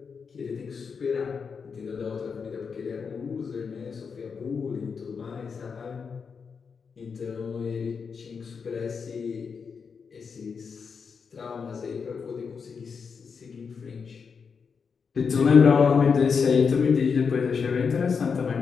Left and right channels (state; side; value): quieter; right; 5.8 dB